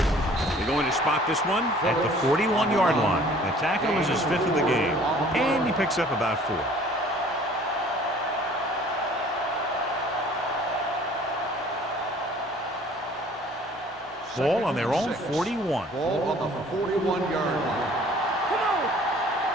They're going to spot this one at the 41-yard line. The tackle is his 5th of the game, and he picks up about 4. Ball on their own 41. Ball on the 41-yard line. Come on.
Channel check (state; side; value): normal; both; correlation 0.53